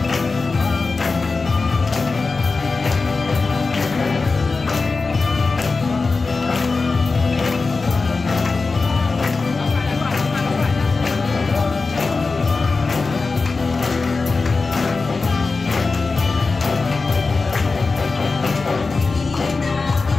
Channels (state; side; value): quieter; right; 4.0 dB